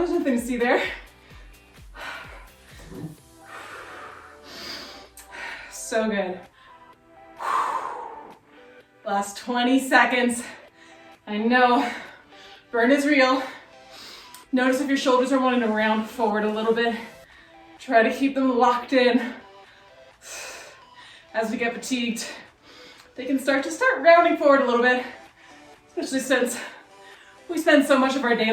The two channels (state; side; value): identical; both; correlation 1.00